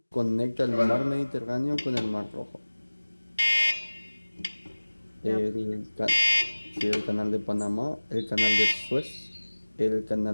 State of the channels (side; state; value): both; inverted; correlation -1.00